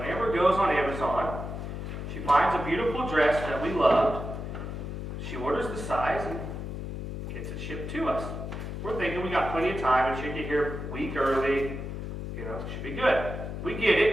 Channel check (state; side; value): noise; left; hum, 6 dB below the sound